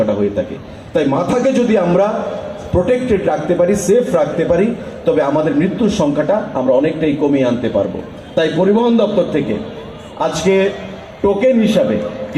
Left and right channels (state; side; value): identical; both; correlation 1.00